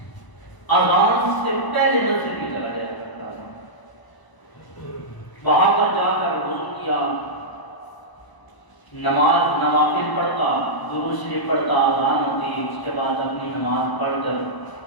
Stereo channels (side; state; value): right; late; 1.0 ms